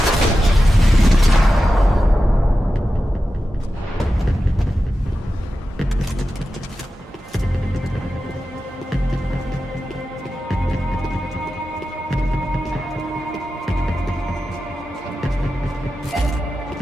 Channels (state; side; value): normal; both; correlation 0.92